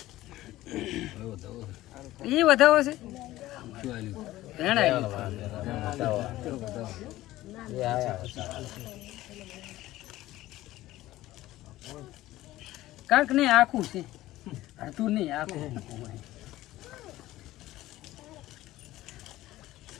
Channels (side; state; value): right; quieter; 16.1 dB